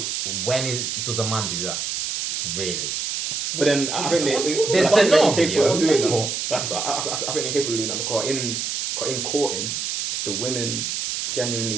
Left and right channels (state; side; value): noise; right; hiss, 2 dB below the sound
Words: Does a man do that? Really? But then I think There's I think no they're capable of doing video. that. I think they're capable of doing that because in courting, the women genuinely